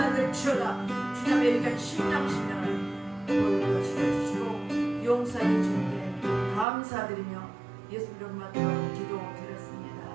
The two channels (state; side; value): drops out; left; at 6.7 s